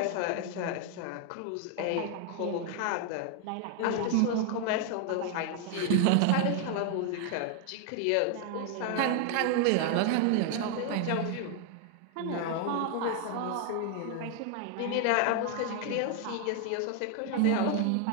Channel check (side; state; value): both; different; correlation 0.00